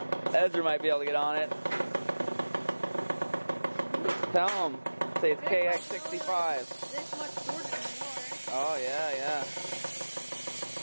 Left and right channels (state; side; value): inverted; both; correlation -1.00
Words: Ezra might be able to get on it. Tell him. Say it's Kx65. This much shorter than yours. Oh, yeah, yeah.